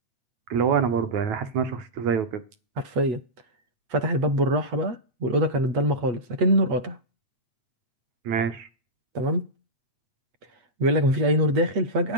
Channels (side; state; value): left; late; 8.3 ms